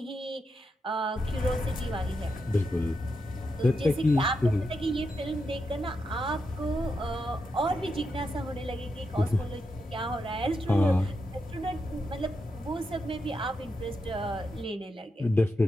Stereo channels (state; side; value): normal; both; correlation 0.85